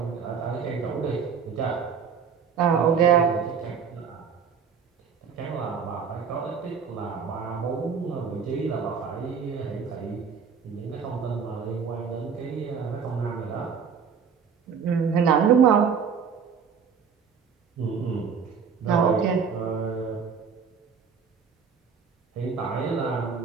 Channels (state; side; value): quieter; left; 6.5 dB